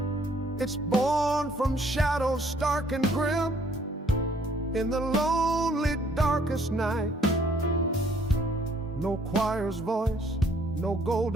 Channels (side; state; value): both; normal; correlation 0.63